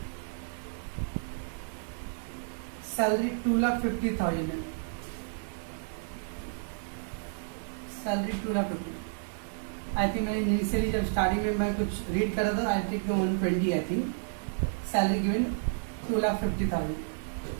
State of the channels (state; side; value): silent; left; digital silence